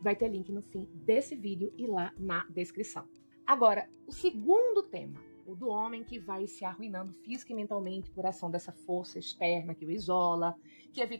Vai ter link no fim desse vídeo e lá na descrição. Agora, o segundo tema, o do homem que vai se arruinando física e mentalmente por ação dessa força externa que o isola, que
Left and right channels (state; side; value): inverted; both; correlation -1.00